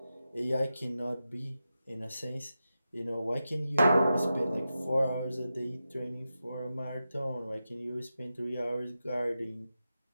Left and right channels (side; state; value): both; inverted; correlation -0.91